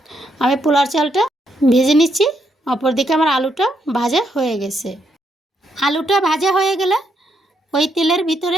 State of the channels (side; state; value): both; normal; correlation 0.77